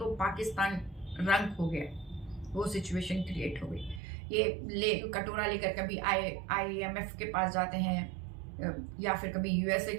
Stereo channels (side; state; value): left; drops out; at 4.0 s